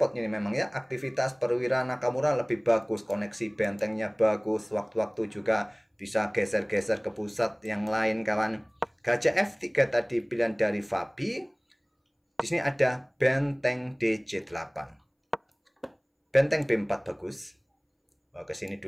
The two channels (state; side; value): identical; both; correlation 1.00